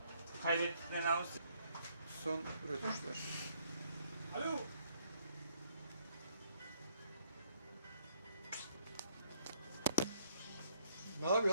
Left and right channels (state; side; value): inverted; both; correlation -0.66